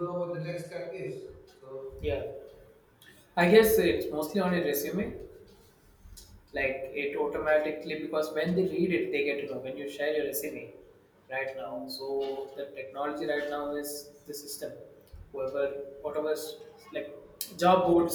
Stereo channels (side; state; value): both; identical; correlation 1.00